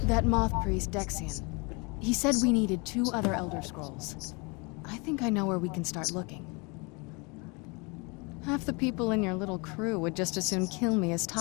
That moth priest, Dexian, he said we needed 2 other Elder Scrolls. I think I know where we can start looking. Half the people in your little crew would just as soon kill me as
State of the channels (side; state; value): right; quieter; 29.7 dB